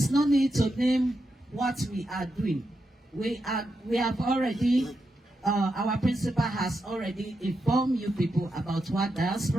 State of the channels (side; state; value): both; normal; correlation 0.86